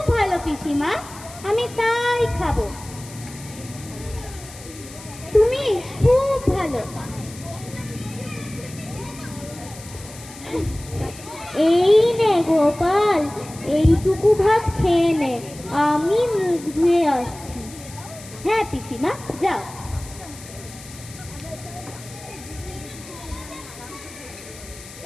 ভালো পিসিমা, আমি তাই খাবো। তুমি খুব ভালো। এই নে গোপাল, এইটুকু ভাত খেয়ে নে, আমি মুখ ধুয়ে আসছি। হ্যাঁ পিসিমা, যাও।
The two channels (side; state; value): left; noise; hiss, 17 dB below the sound